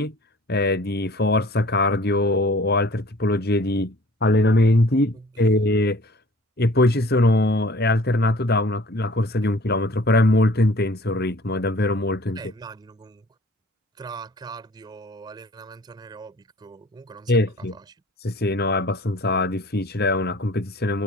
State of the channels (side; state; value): both; normal; correlation 0.50